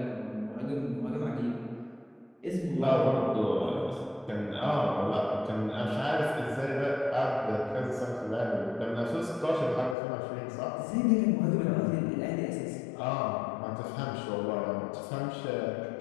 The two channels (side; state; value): right; drops out; at 10.0 s